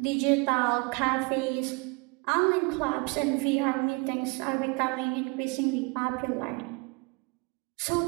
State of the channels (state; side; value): quieter; left; 30.5 dB